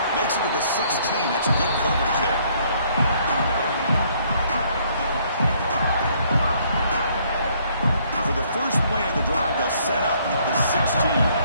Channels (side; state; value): both; inverted; correlation -0.65